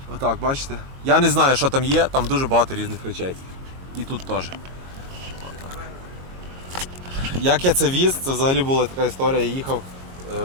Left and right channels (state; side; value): late; left; 22 ms